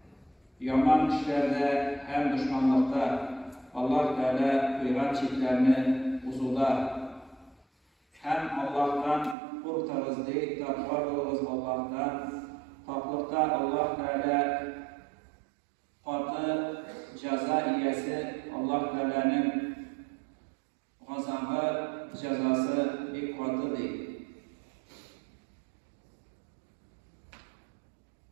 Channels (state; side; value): drops out; left; at 9.3 s